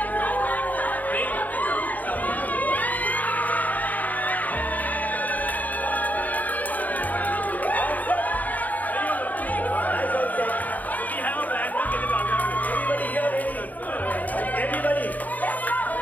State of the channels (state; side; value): late; right; 0.078 ms